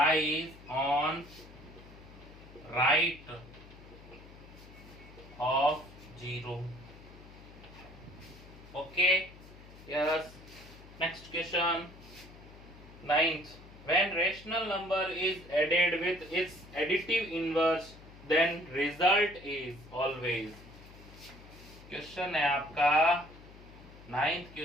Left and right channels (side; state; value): left; noise; hum, 19 dB below the sound